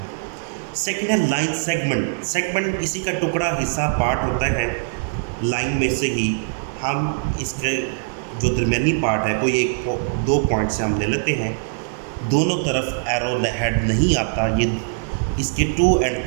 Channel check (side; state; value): left; silent; digital silence